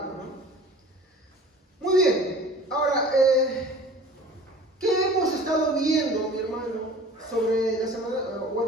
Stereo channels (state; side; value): normal; both; correlation 0.44